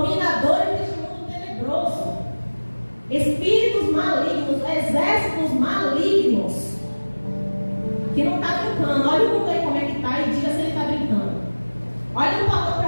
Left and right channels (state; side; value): inverted; both; correlation -1.00